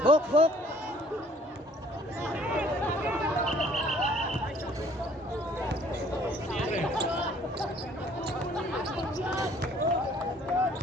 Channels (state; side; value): normal; both; correlation 0.57